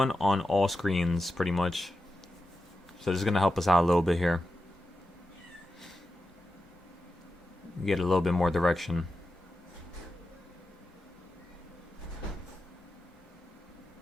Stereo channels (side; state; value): both; normal; correlation 0.90